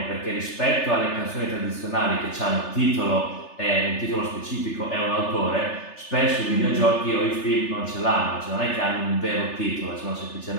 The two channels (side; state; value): right; late; 3.3 ms